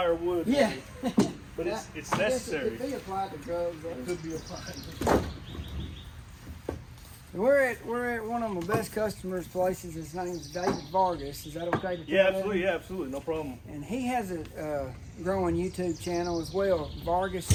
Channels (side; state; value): both; identical; correlation 1.00